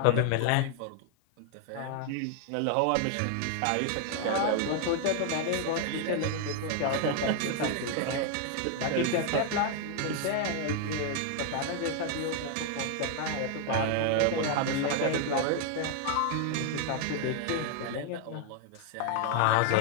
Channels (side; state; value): both; different; correlation 0.00